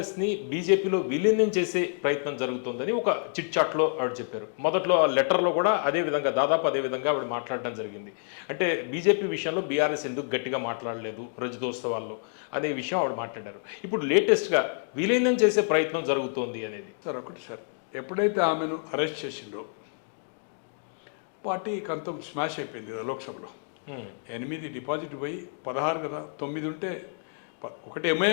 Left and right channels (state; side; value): silent; right; 59 dB below the other